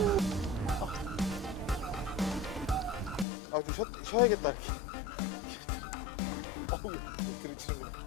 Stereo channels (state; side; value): drops out; right; at 3.2 s